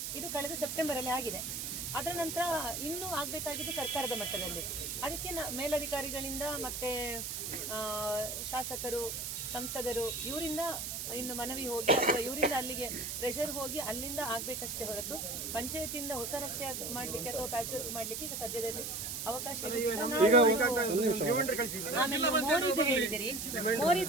ಇದು ಕಳೆದ ಸೆಪ್ಟೆಂಬರಲ್ಲಿ ಆಗಿದೆ. ಅದರ ನಂತರ ಇನ್ನೂ ಆಗಬೇಕಾಗಿದ್ದು ಸರ್ಕಾರದ ಮಟ್ಟದಲ್ಲಿ. ಅದಕ್ಕೆ ಮೇಲಧಿಕಾರಿಗಳಿಂದ ಮತ್ತೆ ಶಾಸಕರು, ಸಂಸದರು ಇವರಿಂದ ಇನ್ನು ಮನವಿ ಹೋಗಿ ಅಥವಾ ಇವರಿಂದ ಅಲ್ಲಿಗೆ ಪ್ರೆಷರ್ ಹೋಗಿ ಅಲ್ಲಿಂದ ಆಗ್ಬೇಕಷ್ಟೇ ಹೊರತು ಪಂಚಾಯತಿಯಿಂದ ಹೊಸ ರಸ್ತೆ ಮಾಡಲಿಕ್ಕೆ ಅಥವಾ ಪ್ಯಾಚ್ ವರ್ಕ್ ಮಾಡಲಿಕ್ಕೆ ಈಗ ಸದ್ಯದಲ್ಲಿ ಅವಕಾಶ ಹೇಳಿದಿರಿ.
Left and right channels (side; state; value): right; noise; hiss, 4 dB below the sound